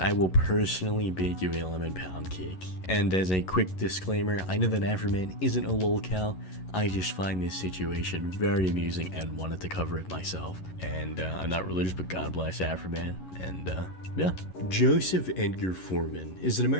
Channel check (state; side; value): late; right; 11 ms